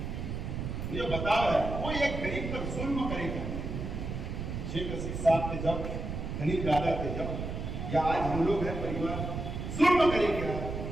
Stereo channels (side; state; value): right; noise; rumble, 5 dB below the sound